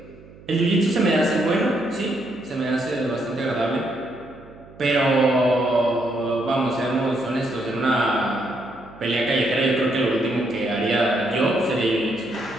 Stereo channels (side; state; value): right; noise; hum, 21 dB below the sound